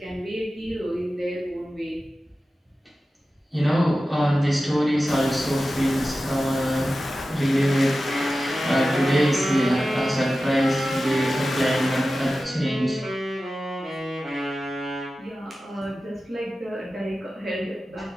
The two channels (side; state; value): both; normal; correlation 0.94